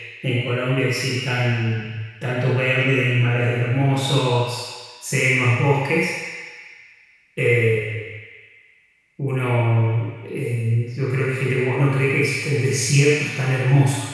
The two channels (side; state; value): both; identical; correlation 1.00